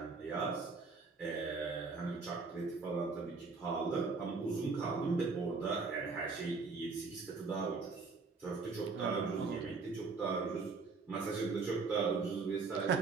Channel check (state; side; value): quieter; left; 4.4 dB